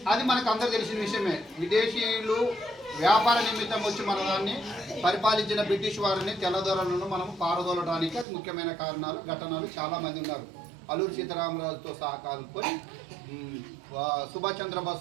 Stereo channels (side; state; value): left; drops out; at 8.2 s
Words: అది మనకు అందరూ తెలిసిన విషయమే. విదేశీయులు వ్యాపార నిమిత్తం వచ్చి మన దాన్ని పరిపాలించిన బ్రిటిష్ వారిని తెల్లదొరలను మనం పారదోలడానికి అది ముఖ్యమైన కారణాలు ఘటనలు చాలామంది ఉన్నారు. అల్లూరి సీతారామరాజుతో సహా కలుపుకొని సుభాష్